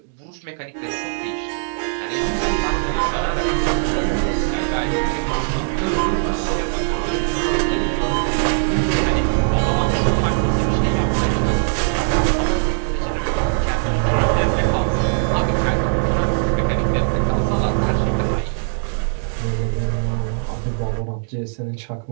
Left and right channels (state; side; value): silent; left; digital silence